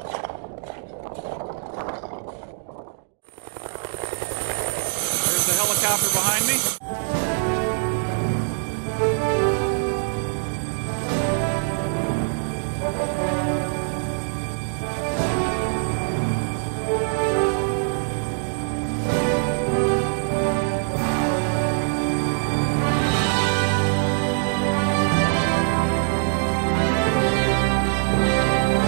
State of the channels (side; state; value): left; silent; digital silence